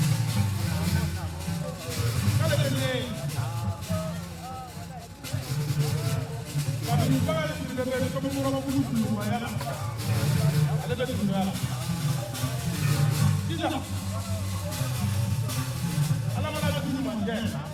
kale ne ka mi ba le ni be ko mo ro ko lu ma ya ale be tu ya Ija. Ala mana ada tujuh manja.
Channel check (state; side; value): identical; both; correlation 1.00